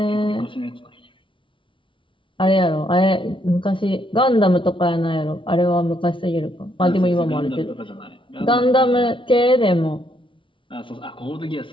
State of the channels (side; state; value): right; late; 0.25 ms